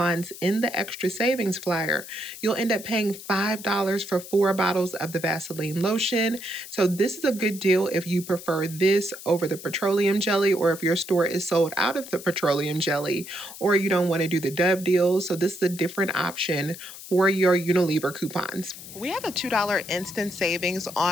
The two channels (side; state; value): left; noise; hiss, 14 dB below the sound